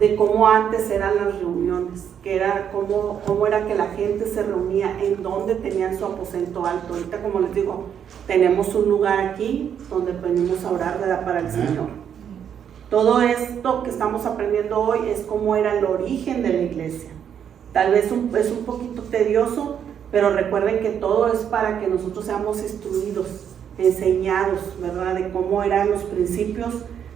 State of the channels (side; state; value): left; quieter; 8.5 dB